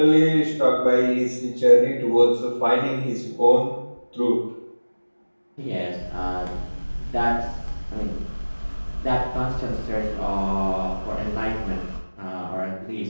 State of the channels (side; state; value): both; inverted; correlation -1.00